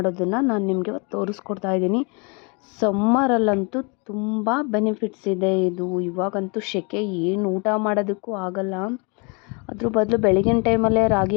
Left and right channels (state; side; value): quieter; right; 32.3 dB